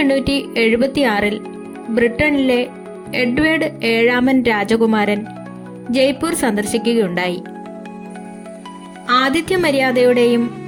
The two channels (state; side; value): identical; both; correlation 1.00